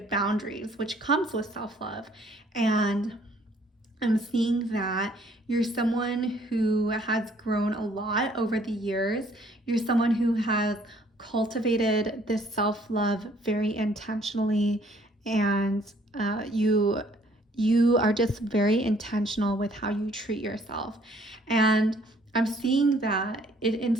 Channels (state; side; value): normal; both; correlation 0.61